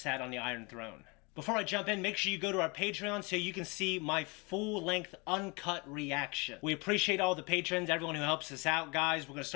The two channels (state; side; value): quieter; right; 28.6 dB